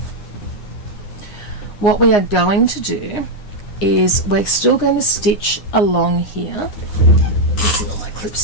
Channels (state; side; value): late; right; 9.7 ms